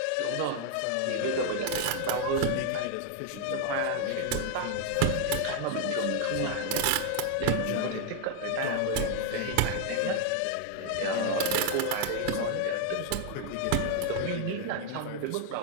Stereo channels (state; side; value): different; both; correlation 0.00